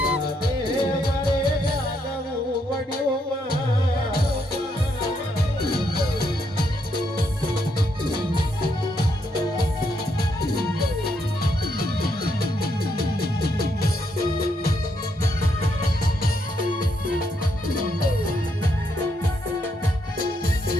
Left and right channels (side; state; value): both; normal; correlation 0.77